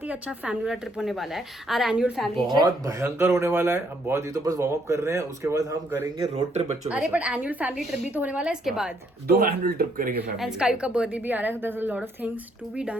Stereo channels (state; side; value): normal; both; correlation 0.70